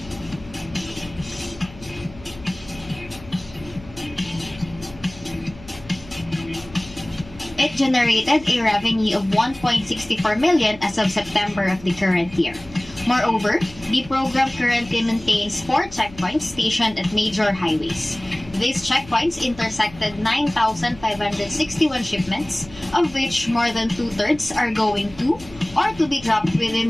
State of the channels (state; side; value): noise; left; hum, 20 dB below the sound